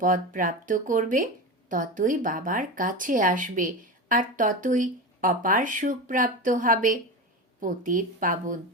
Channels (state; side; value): normal; both; correlation 0.23